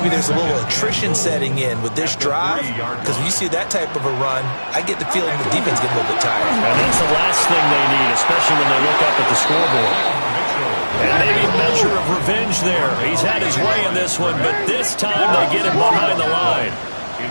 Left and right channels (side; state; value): both; inverted; correlation -1.00